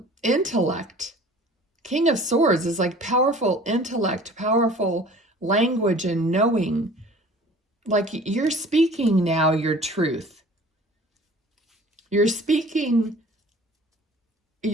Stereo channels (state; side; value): normal; both; correlation 0.47